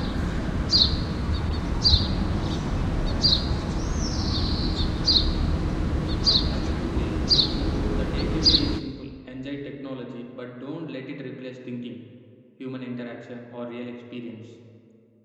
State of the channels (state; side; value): identical; both; correlation 1.00